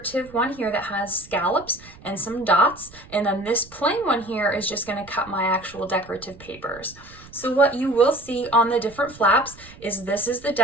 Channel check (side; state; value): right; noise; rumble, 21 dB below the sound